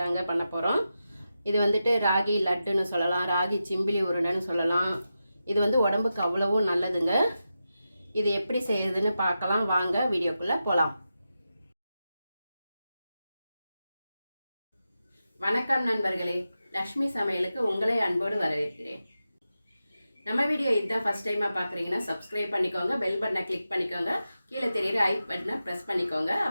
பண்ண போகிறோம். இது வந்துட்டு ராகி லட்டுன்னு சொல்லலாம், ராகி சிம்பிளி உருண்டைன்னு சொல்லலாம். இது வந்து உடம்புக்கு அவ்வளவும் நல்லதுங்க. இது எப்படி செய்யறதுன்னு பார்க்கலாம் வாங்க, வீடியோக்குள்ளே போகலாம். வணக்கம் நண்பர்களே, லக்ஷ்மி சமையலுக்கு உங்களை அன்போடு வரவேற்கிறேன். நம்ம வீடியோ இதுதான் ஃபஸ்ட் டைமாக பார்க்குறீங்கன்னா சப்ஸ்கிரைப் பண்ணிக்கோங்க, பெல் பட்டனை கிளிக் பண்ணிக்கோங்க, கீழே தெரியுற ஐ பட்டனை ப்ரெஸ் பண்ணிக்கோங்க.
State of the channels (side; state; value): both; inverted; correlation -0.90